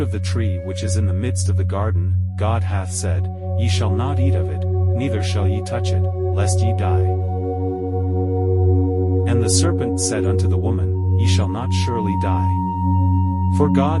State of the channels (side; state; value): both; identical; correlation 1.00